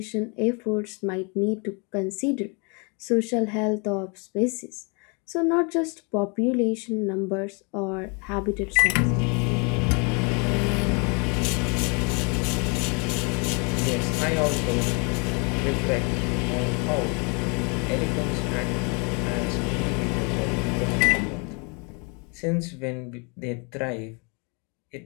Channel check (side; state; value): right; quieter; 33.6 dB